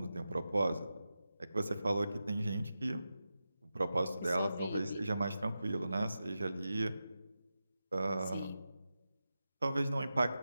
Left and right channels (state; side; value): inverted; both; correlation -0.91